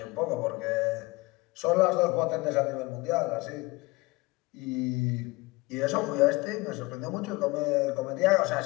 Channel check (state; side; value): quieter; right; 23.0 dB